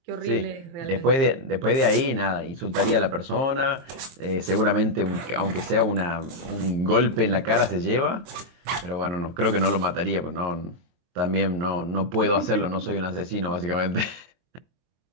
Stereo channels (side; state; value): left; late; 23 ms